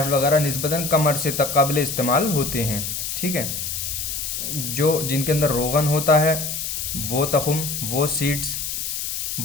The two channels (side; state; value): left; noise; hiss, 4 dB below the sound